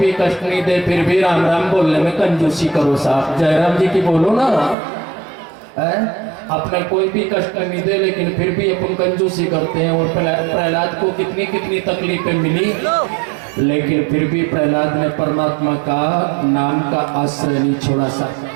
कष्ट नहीं दे फिर भी राम राम बोलने में कंजूसी करो साहब, जयराम जी की बोलो ना है? अपने कोई भी कष्ट नहीं दे लेकिन फिर भी अपन कंजूसी करते हैं। और प्रहलाद को कितनी कितनी तकलीफें मिली लेकिन फिर भी प्रहलाद ने परमात्मा का नाम का आश्रय नहीं छोड़ा सा।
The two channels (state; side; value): drops out; left; at 4.8 s